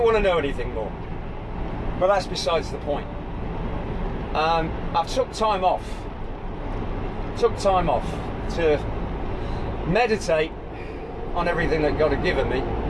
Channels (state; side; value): identical; both; correlation 1.00